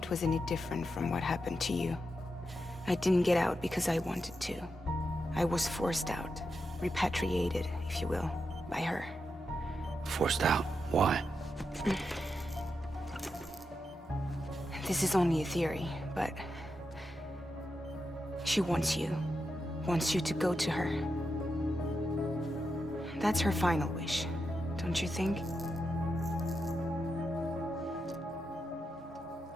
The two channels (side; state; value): both; normal; correlation 0.86